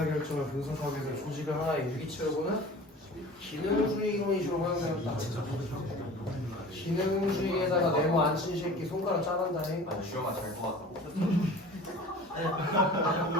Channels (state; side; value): normal; both; correlation 0.41